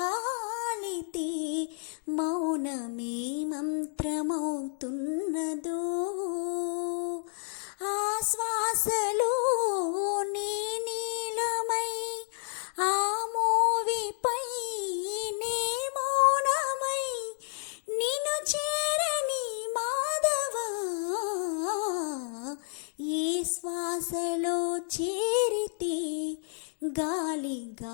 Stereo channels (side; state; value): right; silent; 57 dB below the other